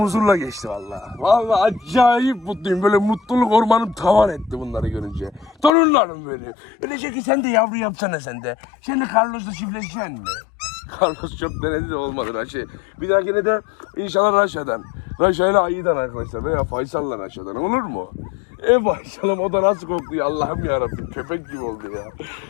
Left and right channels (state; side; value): drops out; right; at 5.7 s